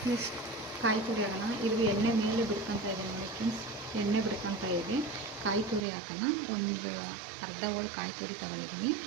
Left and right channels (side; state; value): left; drops out; at 5.9 s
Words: ನೆಕ್ಸ್ಟ್ ಕಾಯಿ ತುರಿ ಹಾಕೋಣ. ಇದು ಎಣ್ಣೆ ಮೇಲೆ ಬಿಡ್ಕೊತಾ ಇದೆ ನೋಡಿ ಫ್ರೆಂಡ್ಸ್, ಎಣ್ಣೆ ಬಿಡ್ಕೊತಾ ಇದೆ. ಕಾಯಿ ತುರಿ ಹಾಕೋಣ. ಒಂದು ಅರ್ಧ ಹೋಳು ಕಾಯಿ ತುರಿ ತಗೊಳ್ಳಿದ್ದೀನಿ,